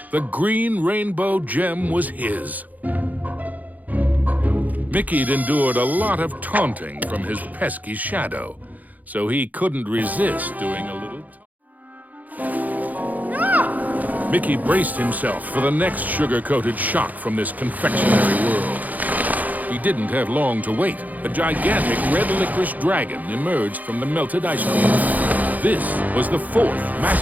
The green rainbow gem was his. Mickey'd endured a lot of taunting from his pesky shadow, so he couldn't resist doing a little... Mickey braced himself for the next sugar-coated shock from this confectionery world. He didn't have long to wait. A gigantic red licorice dragon emerged from the melted ice cream. This was the fourth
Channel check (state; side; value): late; left; 0.080 ms